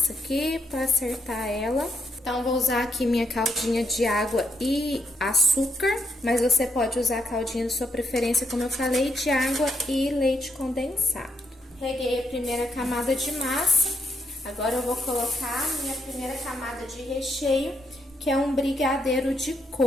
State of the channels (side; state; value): both; normal; correlation 0.77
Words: aqui pra acertar ela. Então, vou usar aqui minha caldinha de água e açúcar, mas você pode usar a caldinha da sua preferência, como eu falei, de água e leite condensado. Reguei a primeira camada de massa. Agora eu vou colocar a minha primeira camada de recheio, que é um brigadeiro de